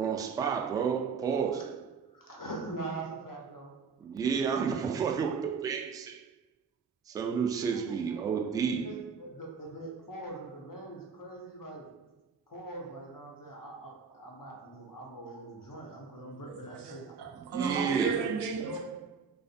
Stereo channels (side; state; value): left; quieter; 5.8 dB